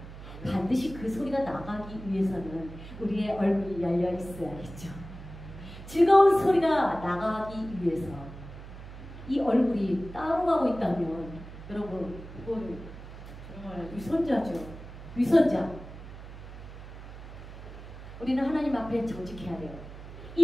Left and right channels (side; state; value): right; noise; hum, 13 dB below the sound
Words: 반드시 그 소리가 나가기 위해서는 우리의 얼굴이 열려 있어야겠죠. 즐거운 소리가 나가기 위해서 이 얼굴이 따로 가고 있다면, 여러분, 이건 정말 위선자죠. 위선자. 우리는 하나님 앞에 정직해야 돼요.